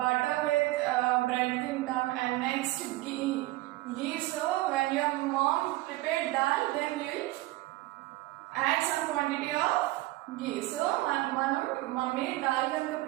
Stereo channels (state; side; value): quieter; left; 18.4 dB